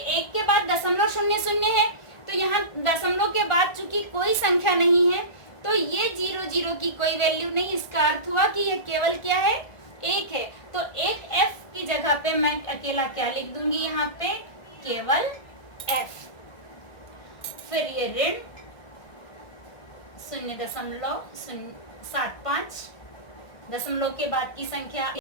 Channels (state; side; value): late; right; 1.4 ms